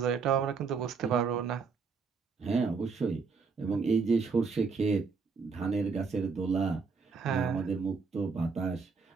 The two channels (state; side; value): quieter; left; 5.0 dB